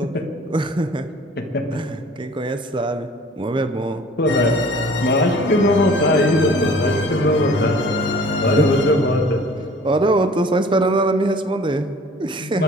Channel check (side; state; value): both; normal; correlation 0.49